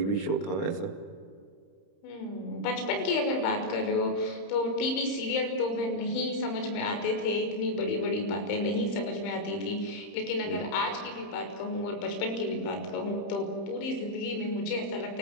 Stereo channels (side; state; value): right; late; 30 ms